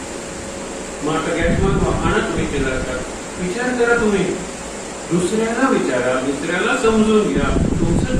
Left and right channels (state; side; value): identical; both; correlation 1.00